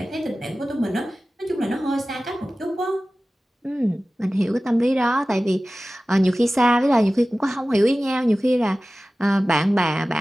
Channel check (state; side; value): normal; both; correlation 0.96